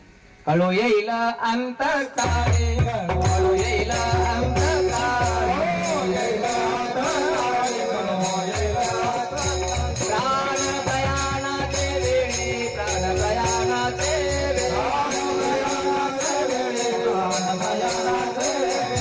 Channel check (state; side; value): identical; both; correlation 1.00